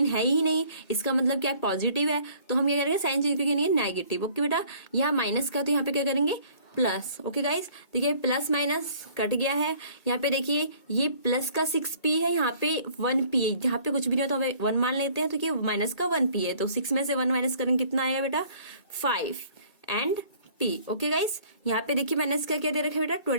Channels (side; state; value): right; late; 2.2 ms